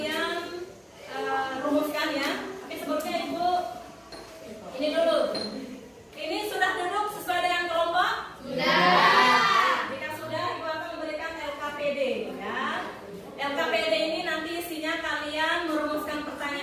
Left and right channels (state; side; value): identical; both; correlation 1.00